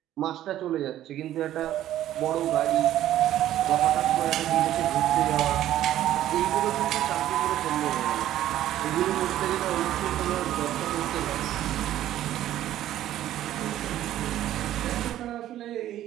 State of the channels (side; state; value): left; quieter; 12.8 dB